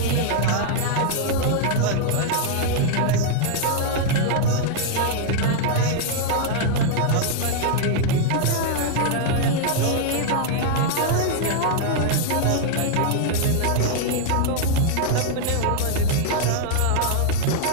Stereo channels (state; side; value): different; both; correlation -0.01